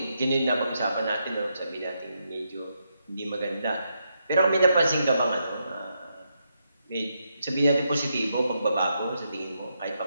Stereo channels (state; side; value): inverted; both; correlation -0.81